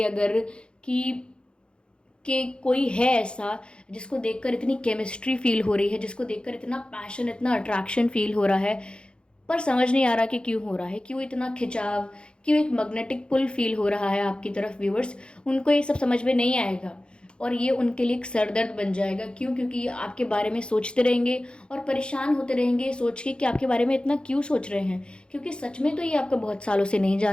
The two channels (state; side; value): late; right; 0.054 ms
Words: अगर कि कोई है ऐसा जिसको देखकर इतनी केमिस्ट्री फील हो रही है, जिसको देखकर इतना पैशन, इतना अट्रैक्शन फील हो रहा है, पर समझ नहीं आ रहा कि क्यों हो रहा है, क्यों इतना खिंचाव, क्यों एक मैग्नेटिक पुल फील हो रहा है आपकी तरफ। व्यूअर्स, उनको ये सब समझ में नहीं आएगा और ये उनके लिए एक सरदर्द बन जाएगा। क्यों? क्योंकि ये आपके बारे में सोचते रहेंगे और परेशान होते रहेंगे सोच के कि आपके बारे में इतना क्यों सोच रहे हैं, क्योंकि सच में तो ये आपको बहुत सालों से नहीं